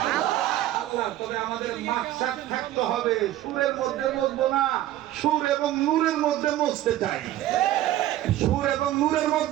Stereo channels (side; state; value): left; quieter; 13.9 dB